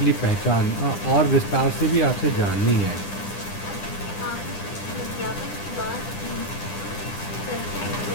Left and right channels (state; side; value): late; right; 9.9 ms